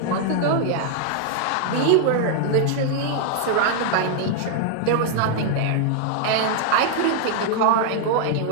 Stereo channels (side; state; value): both; different; correlation -0.01